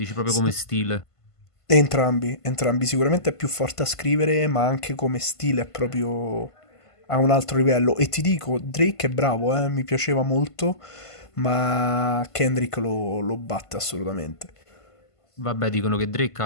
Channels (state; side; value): late; right; 1.5 ms